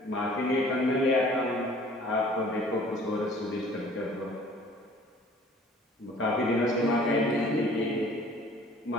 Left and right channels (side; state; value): both; normal; correlation 0.52